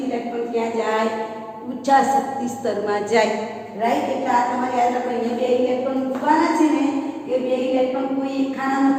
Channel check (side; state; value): both; identical; correlation 1.00